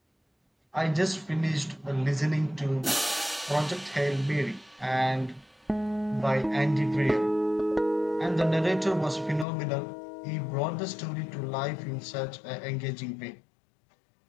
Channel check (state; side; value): drops out; right; at 9.5 s